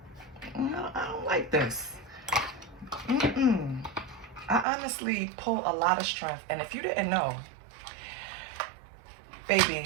I don't like this. I honestly pull a lot of strength. And if you didn't know,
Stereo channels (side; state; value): left; drops out; at 4.7 s